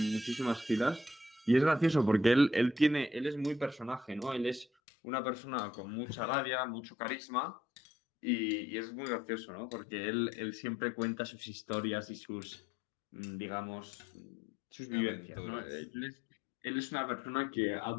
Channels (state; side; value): drops out; right; at 4.7 s